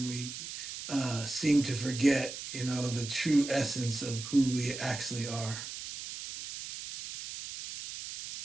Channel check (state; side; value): noise; right; hiss, 9 dB below the sound